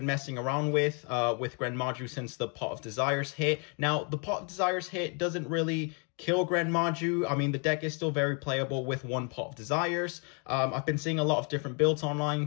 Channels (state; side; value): quieter; right; 36.7 dB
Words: messing around with GREN MAJU since the Pot of Desires hit. Now, the Pot of Desires hit doesn't really kill GREN MAJU. I mean, the deck is still very playable with one Pot of Desires. I've been seeing a lot of different builds